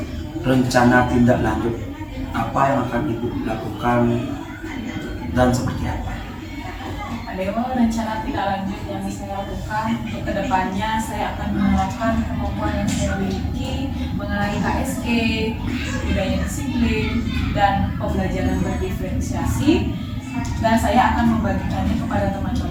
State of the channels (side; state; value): both; identical; correlation 1.00